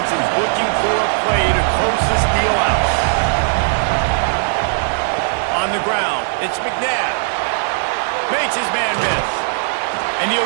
is looking for a play to close this deal out. On the ground, it's McNabb. Makes his man miss. And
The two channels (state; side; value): silent; left; 60 dB below the other